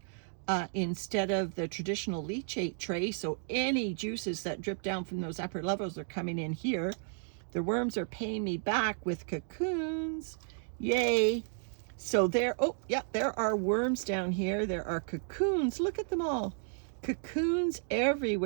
instead of the traditional leachate tray. So any juices that drip down from those upper levels are coming in here. The worms are paying me back with cocoons. Yay. So there, oh yeah, there are worms down here. There are cocoons. Look at them all. Cocoons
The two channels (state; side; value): silent; left; 56 dB below the other